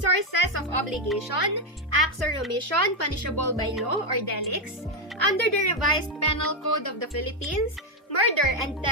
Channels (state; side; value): normal; both; correlation 0.05